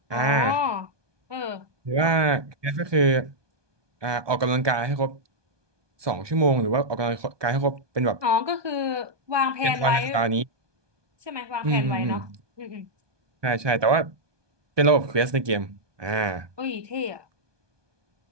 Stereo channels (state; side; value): late; left; 1.2 ms